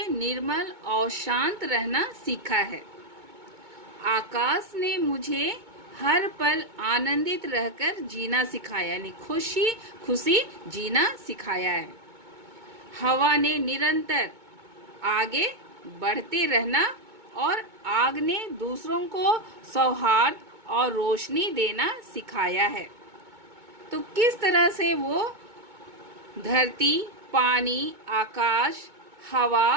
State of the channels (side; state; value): left; late; 2.2 ms